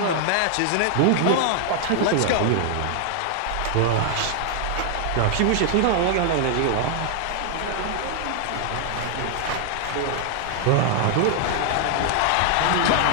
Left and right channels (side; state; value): both; different; correlation -0.01